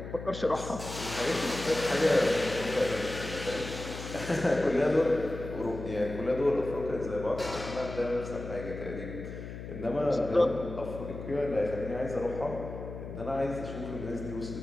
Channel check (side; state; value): left; noise; hum, 9 dB below the sound